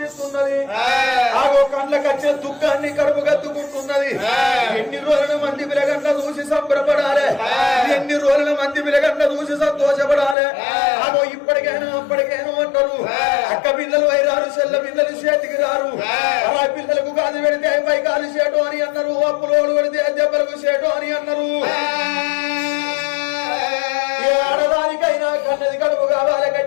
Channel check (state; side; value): drops out; right; at 10.4 s